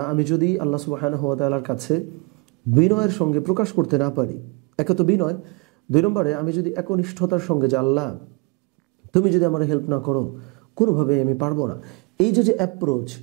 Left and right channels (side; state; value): left; quieter; 29.7 dB